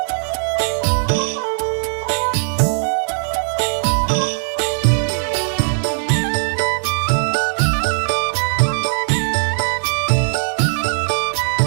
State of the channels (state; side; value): silent; left; digital silence